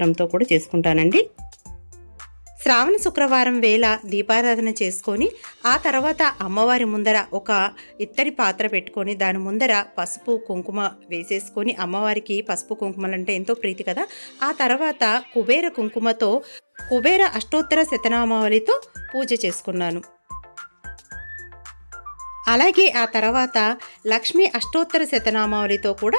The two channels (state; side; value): inverted; both; correlation -1.00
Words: కూడా చేసుకుంటానండి. శ్రావణ శుక్రవారం వేళ దీపారాధన చేసుకొని ఆ తర్వాత అమ్మవారి ముందర ఒక ఇత్తడి పాత్ర పెట్టుకొని దాని ముందర పసుపు కుంకుమ వేసేసుకొని, అమ్మవారికి పసుపు కుంకుమలంటే ఎంతో ప్రీతి కదా, ఆ తర్వాత కుబేర కుంకుమతో కుబేర అష్టోత్తర శతనామావళితో పూజ చేసుకున్నాను. అలాగే ఆ తర్వాత లక్ష్మీ అష్టోత్తర శతనామావళితో